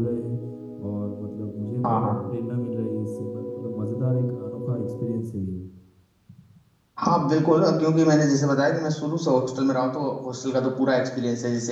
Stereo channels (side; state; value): both; identical; correlation 1.00